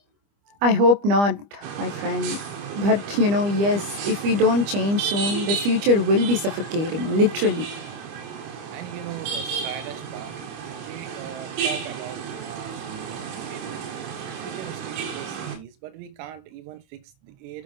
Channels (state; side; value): late; left; 25 ms